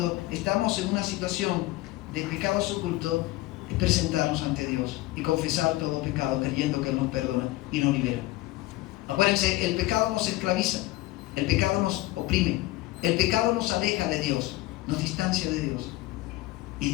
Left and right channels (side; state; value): right; quieter; 18.3 dB